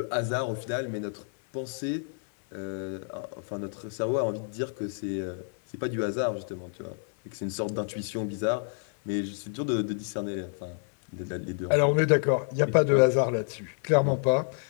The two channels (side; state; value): right; silent; 58 dB below the other